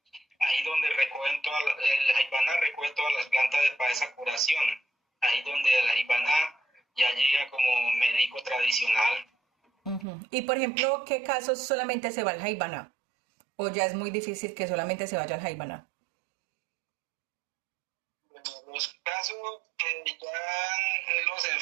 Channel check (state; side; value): drops out; left; at 10.1 s